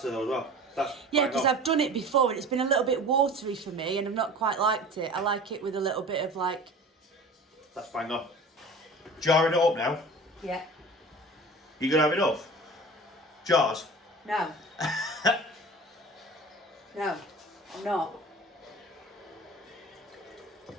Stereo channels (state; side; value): normal; both; correlation 0.40